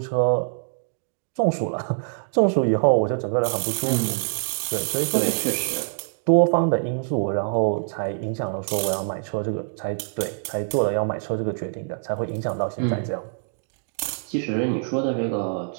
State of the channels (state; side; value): silent; left; digital silence